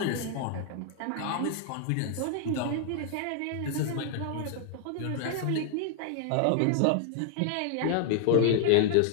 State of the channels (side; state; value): both; different; correlation 0.00